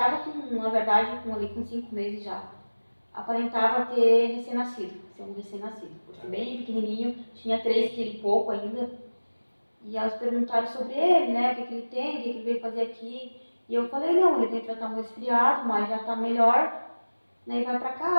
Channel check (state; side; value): inverted; both; correlation -1.00